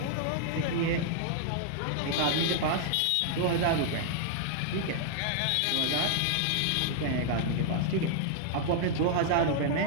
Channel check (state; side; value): different; both; correlation -0.01